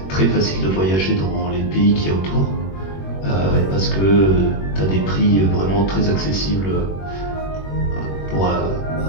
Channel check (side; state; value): right; late; 21 ms